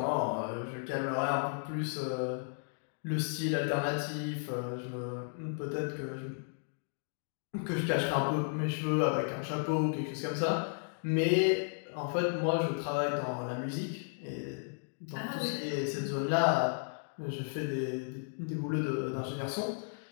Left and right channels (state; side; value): silent; right; digital silence